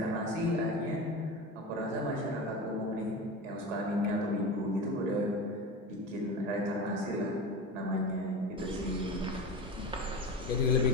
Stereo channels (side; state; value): both; normal; correlation 0.28